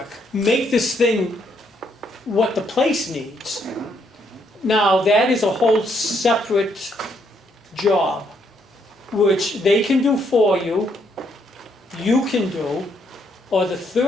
make this thing what the place needs. Now that is a whole separate job, which they can do for you, you can do, or the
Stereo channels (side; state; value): both; normal; correlation 0.73